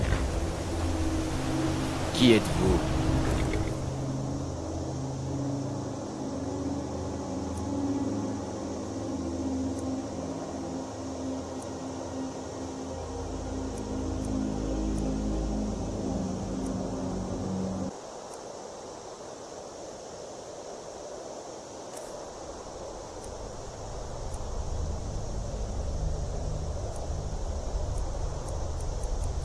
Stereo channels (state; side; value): identical; both; correlation 1.00